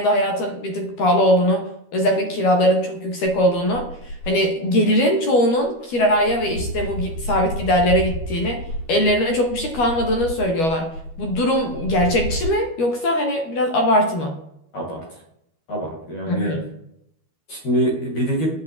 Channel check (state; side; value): late; right; 12 ms